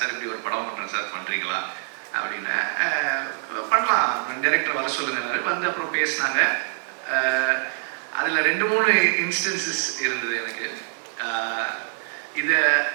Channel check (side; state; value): left; silent; 62 dB below the other